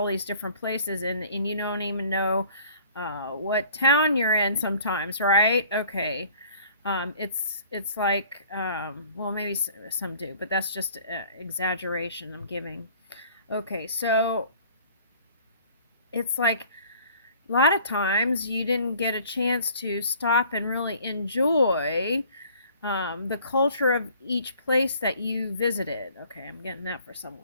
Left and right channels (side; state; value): both; inverted; correlation -0.53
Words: these different places and you don't even know what town you're in sometimes, right? Okay. It's like, well, maybe some do, but that's just exaggeration I'm giving. Okay, so it's like a lot of times you didn't get a chance to stop and really enjoy the culture of each place that you visited. Okay, I'm getting that for someone.